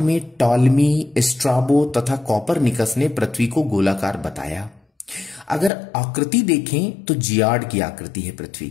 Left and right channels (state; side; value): drops out; right; at 5.7 s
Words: टॉलमी, स्ट्राबो तथा कॉपरनिकस ने पृथ्वी को गोलाकार बताया। अगर आकृति देखें तो जियाड की आकृति है पृथ्वी